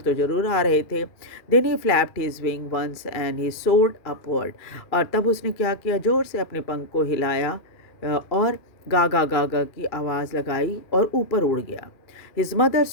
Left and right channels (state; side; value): late; right; 2.4 ms